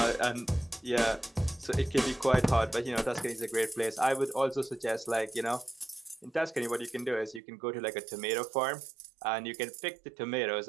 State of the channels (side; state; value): left; drops out; at 7.4 s